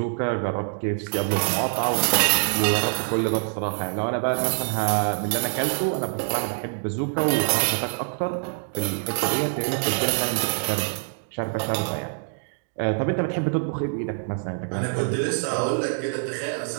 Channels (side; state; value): left; silent; 62 dB below the other